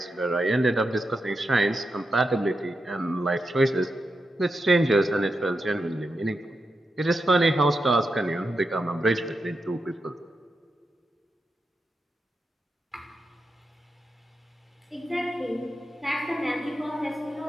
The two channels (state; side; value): normal; both; correlation 0.87